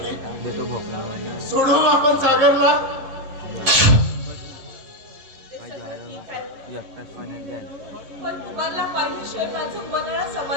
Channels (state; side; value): late; left; 11 ms